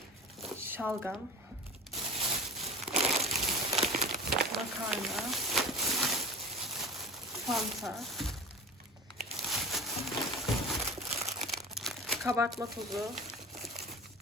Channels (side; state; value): both; normal; correlation 0.33